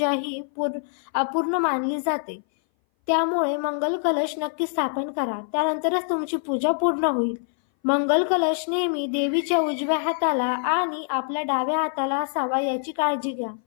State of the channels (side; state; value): right; silent; 59 dB below the other